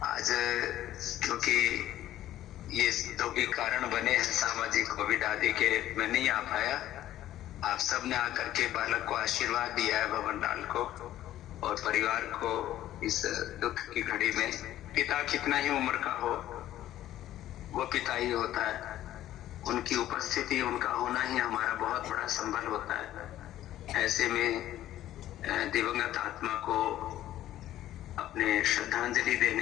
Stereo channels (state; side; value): quieter; right; 13.2 dB